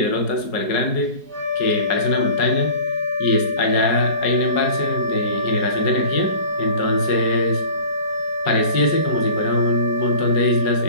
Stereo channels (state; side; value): late; right; 4.8 ms